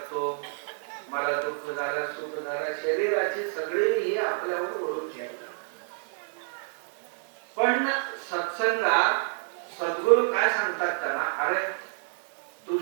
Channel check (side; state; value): left; silent; digital silence